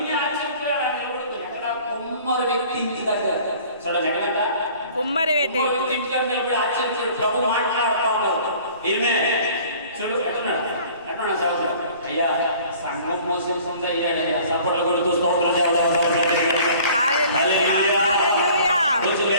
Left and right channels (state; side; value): inverted; both; correlation -0.50